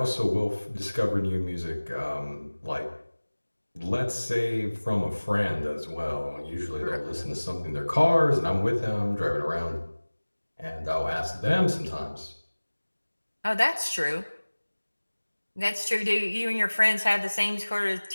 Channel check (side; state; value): both; inverted; correlation -1.00